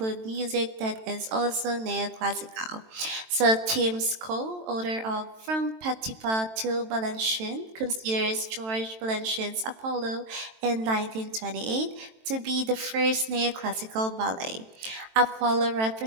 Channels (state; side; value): late; left; 23 ms